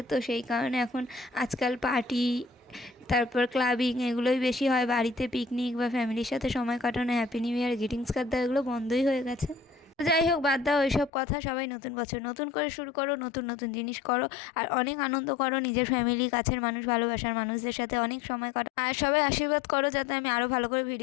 তো সেই কারণে এখন আজকাল পার্টি, তারপর ক্লাবিং এগুলোই বেশি হয়, বাড়িতে পিকনিক বা ফ্যামিলির সাথে সময় কাটানো, happy new year, greetings card দেওয়া, এগুলো বন্ধই হয়ে গেছে। যাই হোক, বাদ দাও ওইসব কথা। সবাই নতুন বছর নতুন করে শুরু করো, নতুন নতুন জিনিস করো, আর অনেক আনন্দ করো, নিজের ফ্যামিলি, কাছের মানুষ, ভালোবাসার মানুষদের সাথে অনেক সময় কাটো। আর সবাই আশীর্বাদ করো যাতে আমি আরও ভালো করে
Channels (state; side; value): drops out; right; at 11.1 s